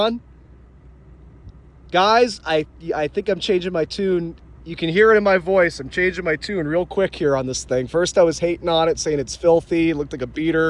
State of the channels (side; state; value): both; identical; correlation 1.00